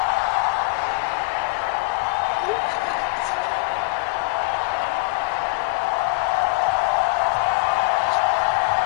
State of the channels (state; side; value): quieter; right; 25.4 dB